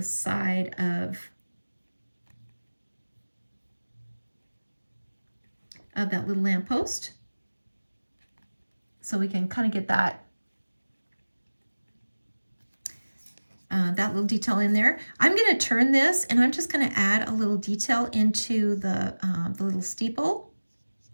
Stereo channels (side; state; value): both; inverted; correlation -1.00